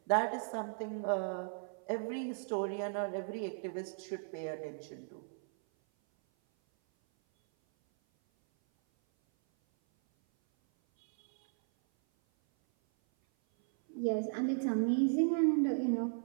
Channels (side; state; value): left; silent; 54 dB below the other